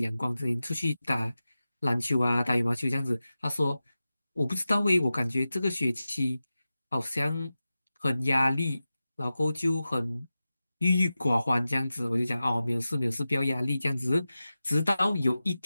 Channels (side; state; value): both; inverted; correlation -0.94